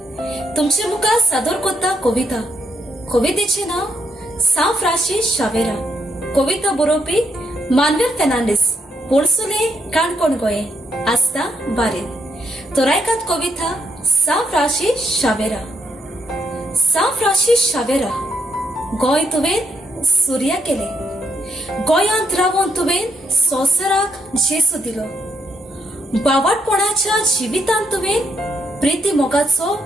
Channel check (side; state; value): both; normal; correlation 0.77